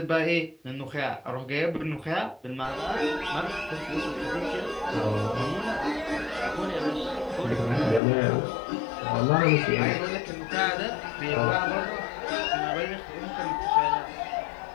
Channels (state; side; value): drops out; right; at 8.0 s